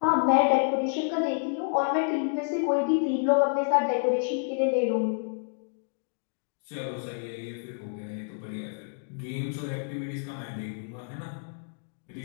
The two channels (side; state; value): right; silent; digital silence